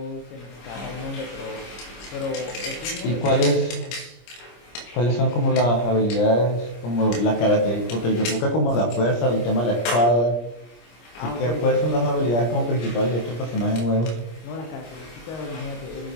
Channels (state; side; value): late; right; 25 ms